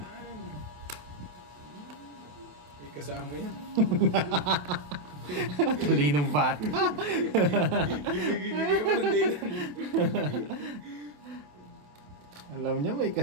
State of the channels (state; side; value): late; left; 27 ms